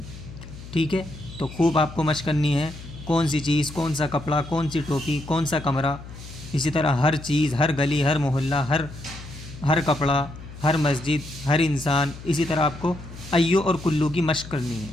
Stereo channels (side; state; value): left; noise; hum, 14 dB below the sound